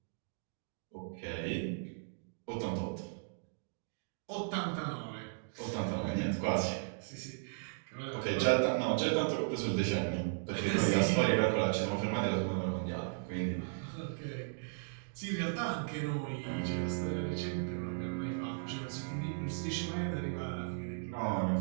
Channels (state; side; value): silent; left; digital silence